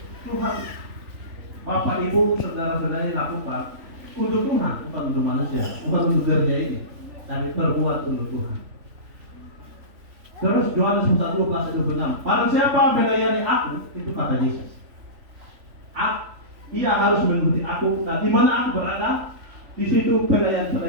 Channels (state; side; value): late; left; 3.4 ms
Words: Tuhan, Bapak, Ibu, saudara-saudari lakukan untuk Tuhan, bukan untuk manusia, bukan untuk gereja ini, tapi perbuat untuk Tuhan. Terus Yohanes 1:12-26. Barang siapa melayani aku, itu kata Yesus. Ia harus mengikuti aku. Nah, di mana aku berada, di situ